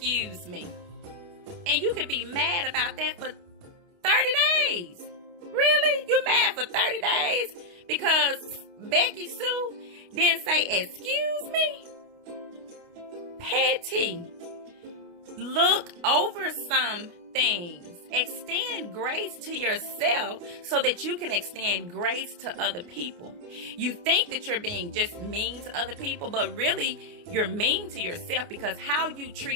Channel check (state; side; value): late; left; 29 ms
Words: me. And you could be mad about that for 30 days. Really? You mad for 30 days because Becky Sue didn't say excuse me? Petty. Look over some things. Extend grace to yourself so that you can extend grace to other people. You think that you're being just mean to other people, but really you're mean to yourself, because how you